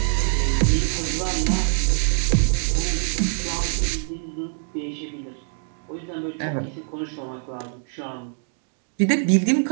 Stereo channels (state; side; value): silent; left; digital silence